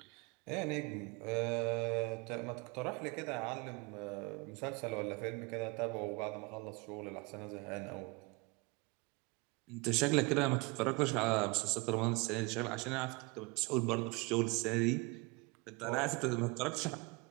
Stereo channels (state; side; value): quieter; left; 27.3 dB